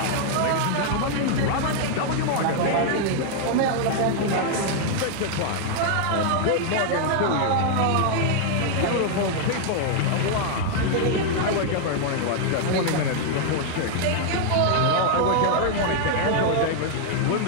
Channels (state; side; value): different; both; correlation 0.00